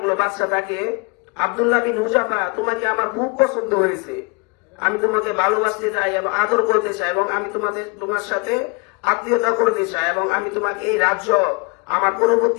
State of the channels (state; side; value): quieter; right; 30.1 dB